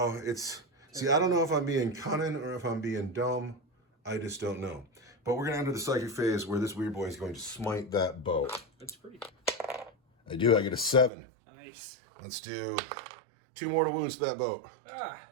see, I don't know if I'm being cunning or if I'm being dumb. I just don't know. But we're going to enter the psychic phase where this Weird Boy is going to smite that boat. That's pretty. I do. I get a 7. Nice. Let's do 2 mortal wounds to that boat.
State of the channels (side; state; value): left; drops out; at 11.1 s